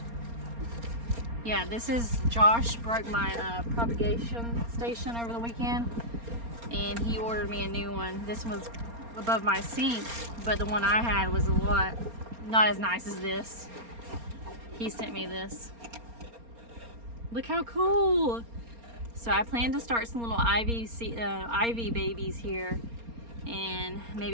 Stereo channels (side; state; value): left; late; 4.3 ms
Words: Yeah, this is Josh broke my propagation station over the weekend, and he ordered me a new one. This one was above my sink, but the one I had was a lot not as nice as this. He sent me this. Look how cool! So I plan to start some little ivy babies here, and